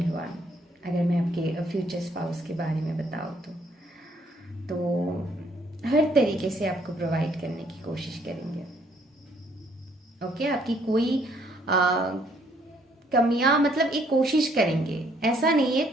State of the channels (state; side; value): normal; both; correlation 0.66